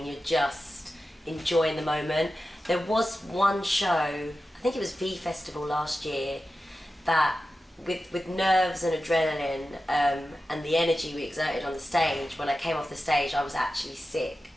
you're just enjoying the moment. There was one show, I think it was V Festival last year, that with nerves and adrenaline and the energy we exerted on the stage, when I came off the stage I was actually sick.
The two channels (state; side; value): normal; both; correlation 0.93